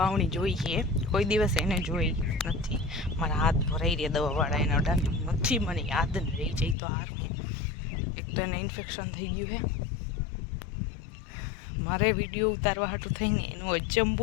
जोई है कोई दिवस एने जोई नहीं मारा हाथ भराई रहा दवावाड़ा एना अडानी नहीं मने याद नहीं रही जाए तो हार में एक तो एने इन्फेक्शन थी गयु है मारे विडियो उतारवा हाटू थईने एनो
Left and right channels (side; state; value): right; drops out; at 6.8 s